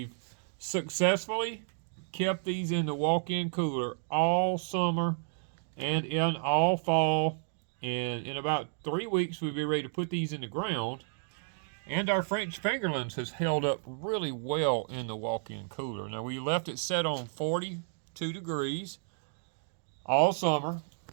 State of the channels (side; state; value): left; silent; digital silence